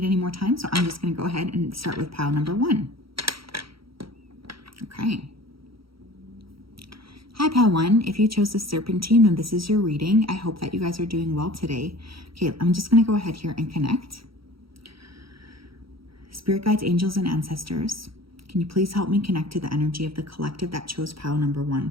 any more time, so I'm just going to go ahead and start with pile number 1. Okay. Hi, pile 1. If you chose the Serpentine, then this is your reading. I hope that you guys are doing well today. Okay, I'm just going to go ahead here and connect. Spirit guides, angels, and ancestors, can you please help me connect to the energy of the collective that chose pile number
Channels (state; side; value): late; left; 0.75 ms